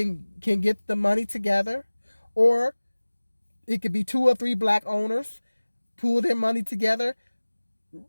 the money together, or it could be 2 or 3 black owners pool their money together,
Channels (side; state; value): both; inverted; correlation -1.00